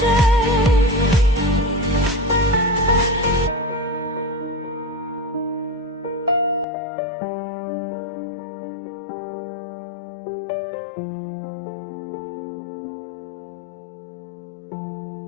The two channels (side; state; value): right; drops out; at 6.7 s